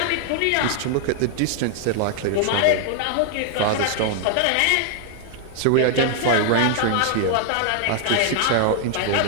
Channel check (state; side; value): different; both; correlation 0.00